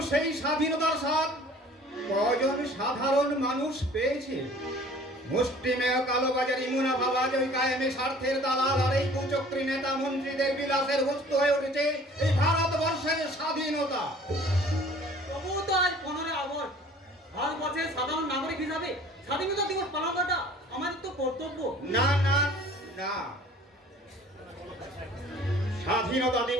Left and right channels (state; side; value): normal; both; correlation 0.50